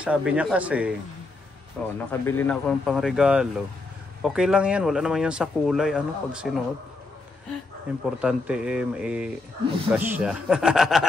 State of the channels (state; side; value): quieter; right; 3.3 dB